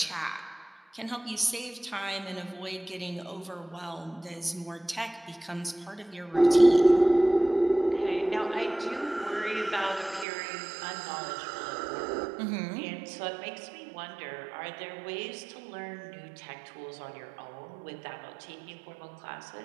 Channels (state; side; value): drops out; left; at 10.2 s